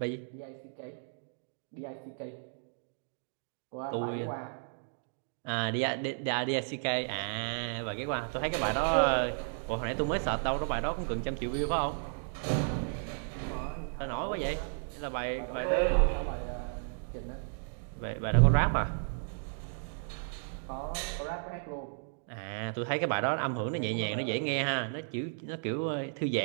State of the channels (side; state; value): left; silent; digital silence